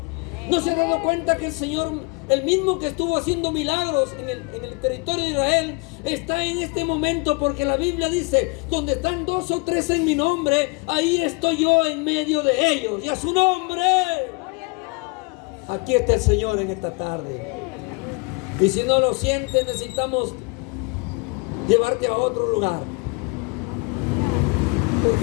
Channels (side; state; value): right; quieter; 29.8 dB